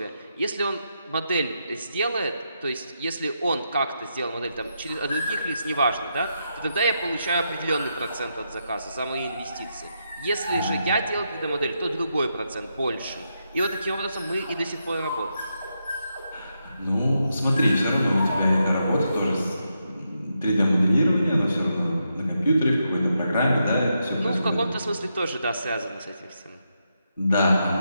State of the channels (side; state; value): both; inverted; correlation -0.83